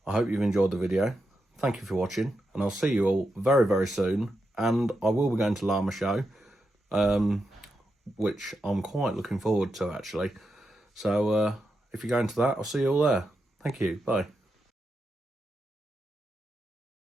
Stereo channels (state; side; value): normal; both; correlation 0.86